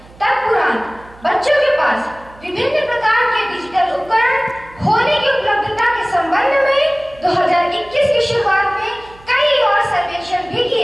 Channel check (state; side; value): noise; right; hum, 23 dB below the sound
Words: तत्पुरांत बच्चों के पास विभिन्न प्रकार के डिजिटल उपकरण होने की उपलब्धता के संबंध में 2021 की शुरुआत में कई और सर्वेक्षण भी